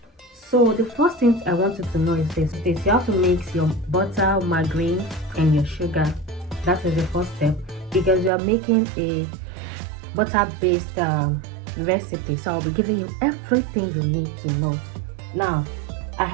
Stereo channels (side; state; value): left; drops out; at 8.3 s